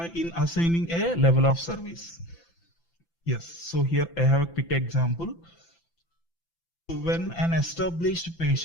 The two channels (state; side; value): late; right; 5.9 ms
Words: in assigning a level of service? Yes, so here I have a quick example. When an established